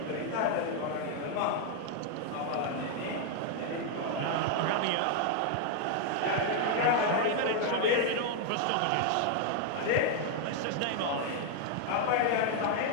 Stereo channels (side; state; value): both; different; correlation 0.00